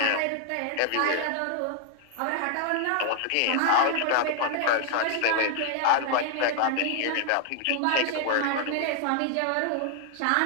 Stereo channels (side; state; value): both; different; correlation 0.00